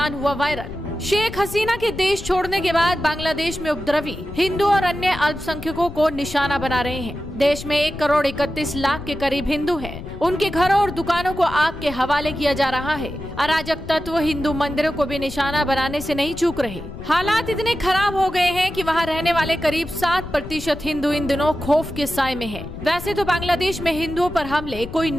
हुआ वायरल। शेख हसीना के देश छोड़ने के बाद बांग्लादेश में उपद्रवी हिंदू और अन्य अल्पसंख्यकों को निशाना बना रहे हैं। देश में 1,31,00,000 के करीब हिंदू हैं। उनके घरों और दुकानों को आग के हवाले किया जा रहा है। अराजक तत्व हिंदू मंदिरों को भी निशाना बनाने से नहीं चूक रहे। हालात इतने खराब हो गए हैं कि वहां रहने वाले करीब 7% हिंदू इन दिनों खौफ के साए में हैं। वैसे तो बांग्लादेश में हिंदुओं पर हमले कोई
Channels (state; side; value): noise; left; rumble, 11 dB below the sound